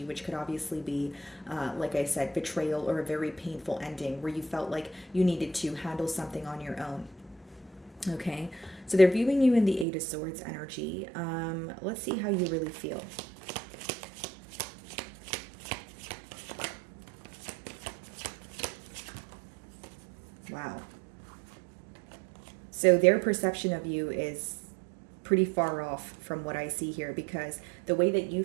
which could obviously be, like I said, betrayal or a very painful ending where you felt like you needed to handle something on your own. Okay, so they're viewing you in the Eight of Swords energy. Let's see how you really feel. Wow. So their perception of you is pretty far off from what I see here, because the way that you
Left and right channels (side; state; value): left; drops out; at 9.9 s